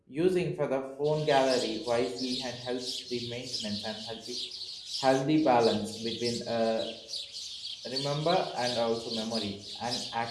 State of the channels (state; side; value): identical; both; correlation 1.00